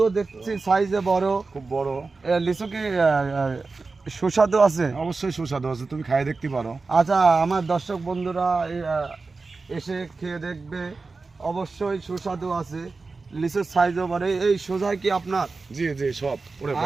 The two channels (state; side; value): quieter; left; 4.0 dB